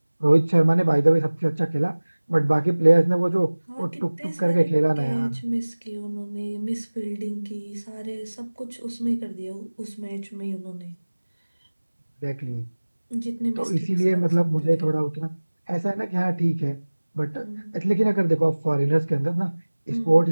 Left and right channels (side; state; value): both; inverted; correlation -1.00